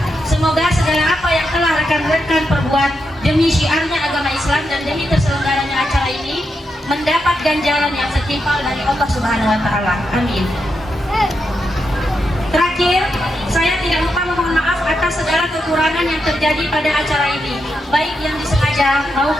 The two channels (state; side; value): normal; both; correlation 0.84